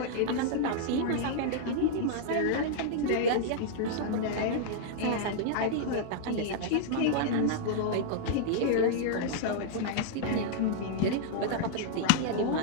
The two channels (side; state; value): both; different; correlation -0.01